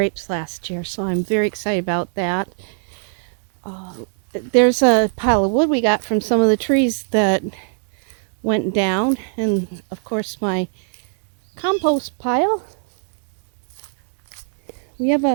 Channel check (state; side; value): silent; left; digital silence